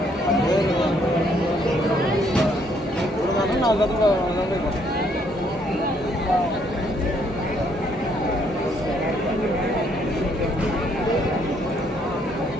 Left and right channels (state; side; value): normal; both; correlation 0.68